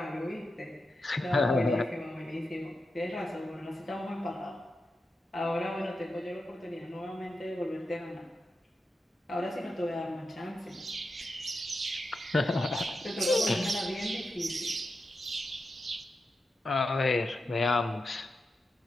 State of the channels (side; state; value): both; normal; correlation 0.89